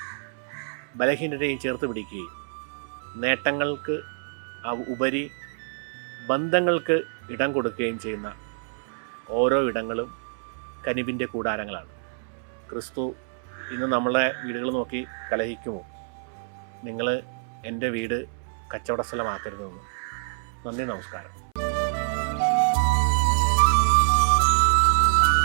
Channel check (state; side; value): silent; left; 61 dB below the other